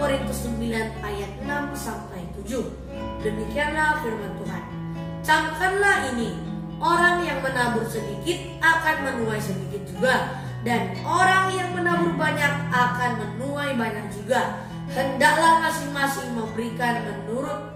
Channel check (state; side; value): identical; both; correlation 1.00